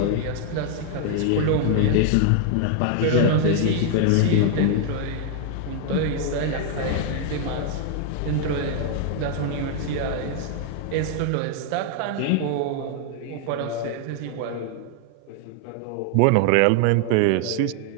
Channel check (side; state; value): both; different; correlation 0.00